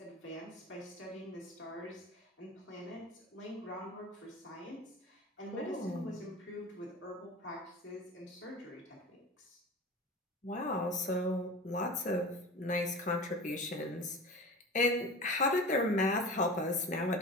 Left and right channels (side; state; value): both; normal; correlation 0.34